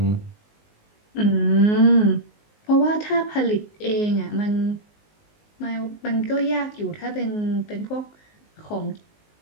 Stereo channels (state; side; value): late; right; 19 ms